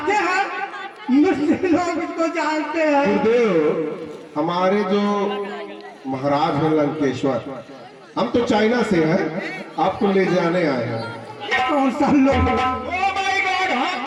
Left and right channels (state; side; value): identical; both; correlation 1.00